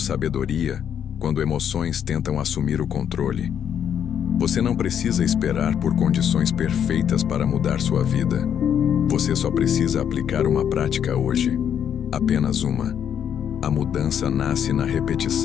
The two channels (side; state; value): right; quieter; 8.8 dB